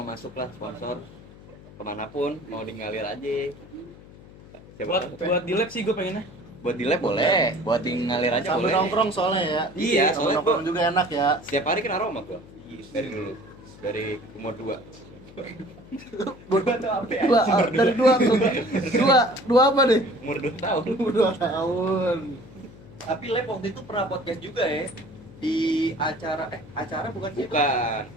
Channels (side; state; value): left; noise; hum, 20 dB below the sound